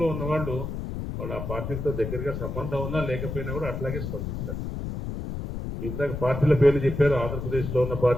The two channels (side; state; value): left; noise; rumble, 5 dB below the sound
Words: లో ఉన్న వాళ్ళు ఆ పార్టీలతో దగ్గరగా సంబంధం ఉన్నా లేకపోయినా కూడా అట్లాగే స్పందిస్తారు. ఇందాక పార్టీల పేర్లు చెప్పారు. ఆంధ్రప్రదేశ్ లో ఉన్న